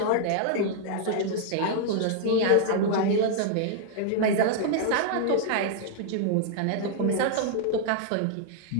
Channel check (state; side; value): different; both; correlation -0.01